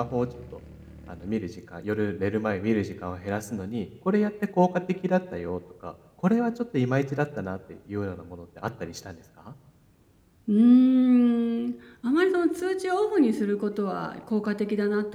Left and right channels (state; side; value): identical; both; correlation 1.00